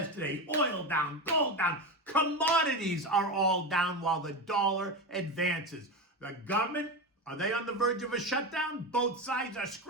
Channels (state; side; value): normal; both; correlation 0.19